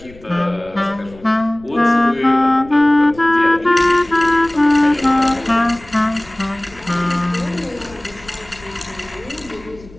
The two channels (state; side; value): noise; left; rumble, 22 dB below the sound